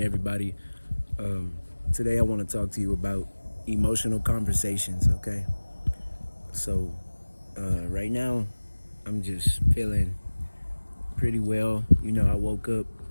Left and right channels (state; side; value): inverted; both; correlation -1.00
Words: Today, I want to talk to you about emotional conversations, okay? So, right now, I'm just feeling pretty well. I woke up